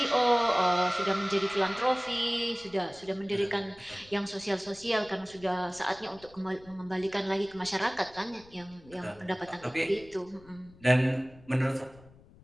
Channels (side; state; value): left; noise; rumble, 24 dB below the sound